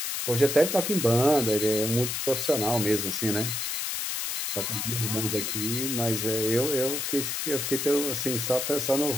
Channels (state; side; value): noise; left; hiss, 2 dB below the sound